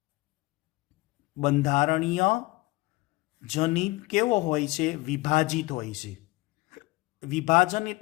બંધારણીય જનીન કેવો હોય છે? વિભાજિત હોય છે. વિભાજન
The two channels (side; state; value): right; quieter; 21.3 dB